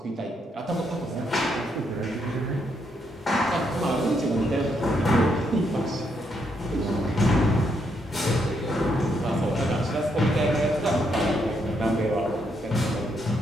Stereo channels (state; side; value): normal; both; correlation 0.76